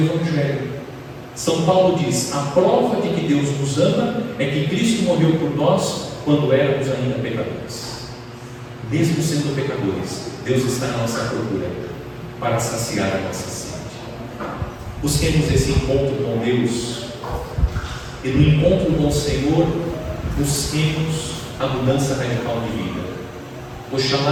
São Paulo diz: a prova de que Deus nos ama é que Cristo morreu por nós quando éramos ainda pecadores. Mesmo sendo pecadores, Deus está na nossa procura para saciar a nossa sede. Busquemos esse encontro com Deus, e no encontro com o Senhor busquemos a mudança radical de vida. Oxalá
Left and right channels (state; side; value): identical; both; correlation 1.00